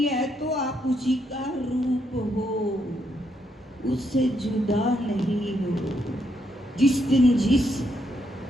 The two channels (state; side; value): normal; both; correlation 0.77